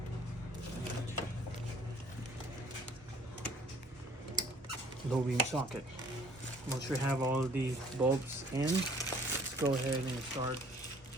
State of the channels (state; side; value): normal; both; correlation 0.56